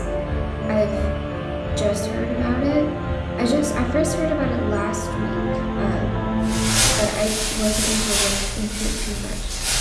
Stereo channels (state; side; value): identical; both; correlation 1.00